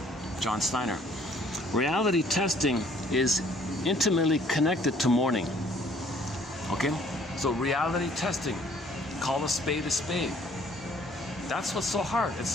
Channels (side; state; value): both; normal; correlation 0.60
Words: John Steiner. Reality testing is intimately connected to mourning. Okay? So reality testing, call a spade a spade. That's what's so hard.